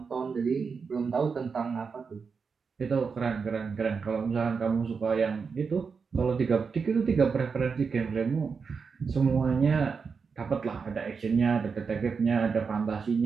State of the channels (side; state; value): left; quieter; 5.4 dB